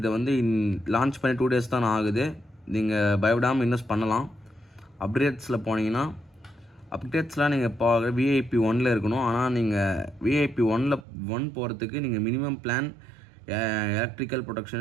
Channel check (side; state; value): left; drops out; at 11.1 s